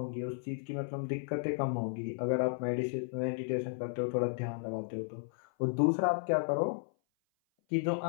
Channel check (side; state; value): right; silent; 55 dB below the other